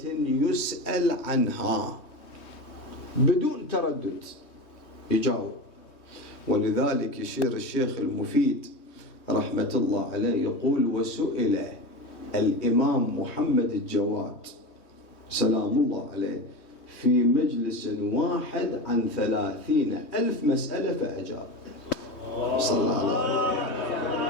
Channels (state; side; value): late; right; 3.2 ms